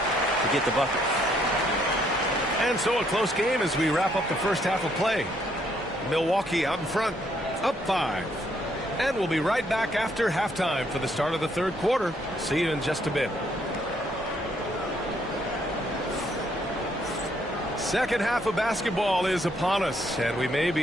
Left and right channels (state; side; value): normal; both; correlation 0.70